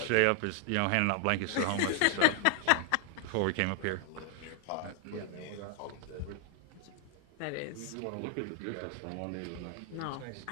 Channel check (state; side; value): different; both; correlation 0.00